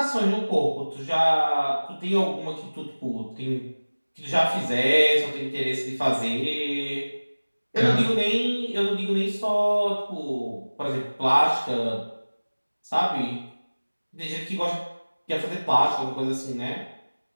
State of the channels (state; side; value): inverted; both; correlation -1.00